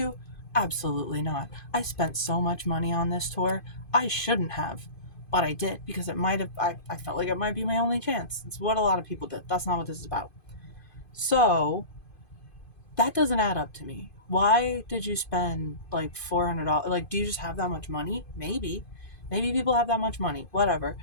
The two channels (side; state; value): right; late; 2.5 ms